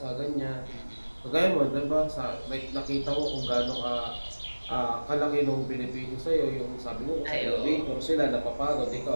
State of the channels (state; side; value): inverted; both; correlation -1.00